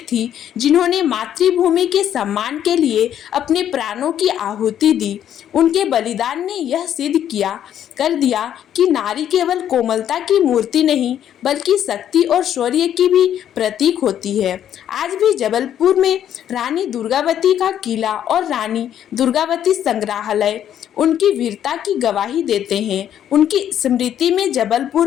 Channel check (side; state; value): right; quieter; 10.3 dB